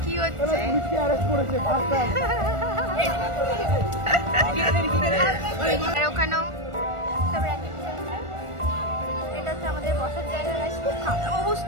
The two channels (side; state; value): left; late; 1.4 ms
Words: কি হচ্ছে? ওখানেও এটা হচ্ছে আমাদের বসার জায়গা। খুব খারাপ